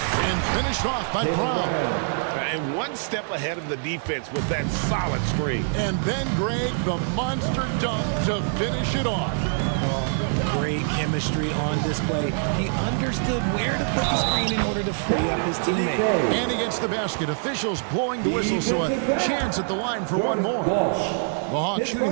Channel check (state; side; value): silent; left; 62 dB below the other